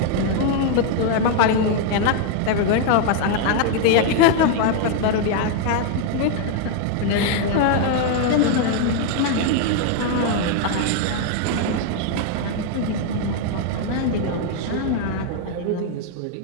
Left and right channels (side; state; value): both; different; correlation 0.00